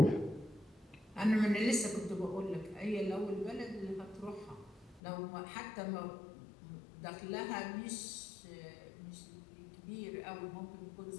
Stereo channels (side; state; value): right; drops out; at 5.0 s